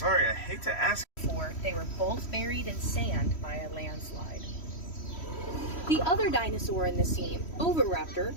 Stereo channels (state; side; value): late; right; 3.1 ms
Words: I hate to ask. They were both buried in sand by a landslide. The other dinosaur in the scene, Oviraptor,